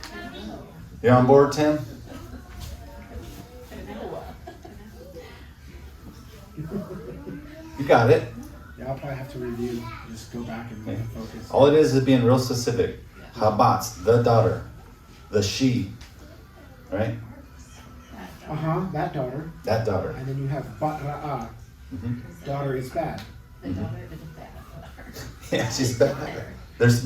You on board, Tim? You got it. Yeah, I'll probably have to review, just go back and focus. All it is being real specific. Habatz, the daughter, the she, right? Uh-huh, that daughter. That daughter. And then you have Batra'ah, daughter is bad. The daughter is a bad daughter. Yeah, she's bad.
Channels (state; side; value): identical; both; correlation 1.00